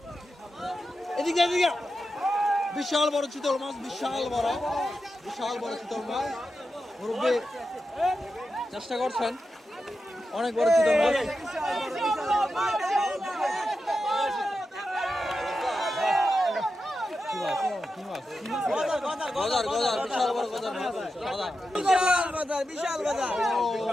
এদিকে এদিকে। বিশাল বড় চিতল মাছ, বিশাল বড় চিতল মাছ। মুরব্বি চেষ্টা করছেন, অনেক বড় চিতল মাছ। বিশাল বড় বিশাল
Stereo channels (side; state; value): both; normal; correlation 0.89